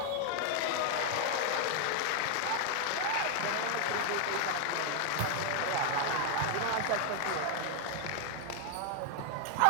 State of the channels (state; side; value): different; both; correlation 0.00